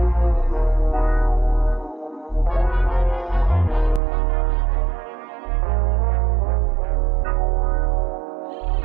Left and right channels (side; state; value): left; drops out; at 4.0 s